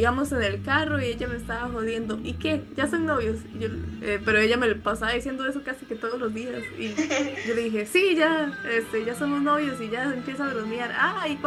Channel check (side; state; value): both; identical; correlation 1.00